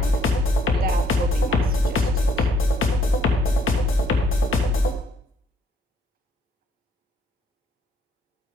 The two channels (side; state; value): both; normal; correlation 0.66